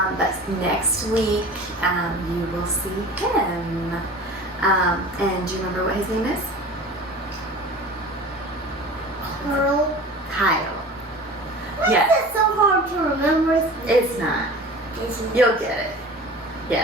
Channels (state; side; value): normal; both; correlation 0.39